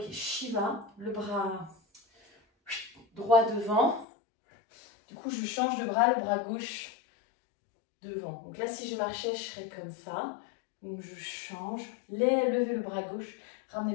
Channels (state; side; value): drops out; right; at 4.0 s